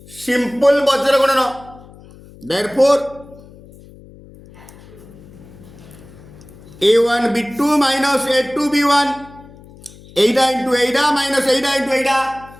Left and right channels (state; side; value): noise; left; hum, 21 dB below the sound